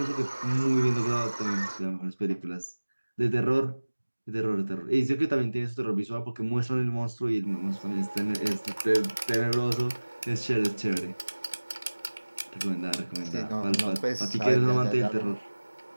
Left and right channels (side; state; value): both; inverted; correlation -1.00